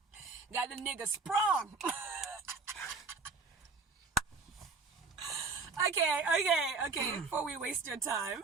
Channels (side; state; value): left; quieter; 4.3 dB